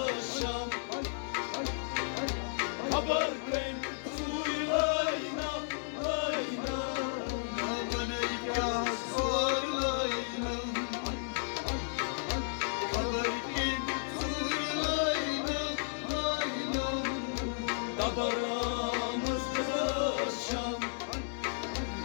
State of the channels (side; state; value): right; silent; digital silence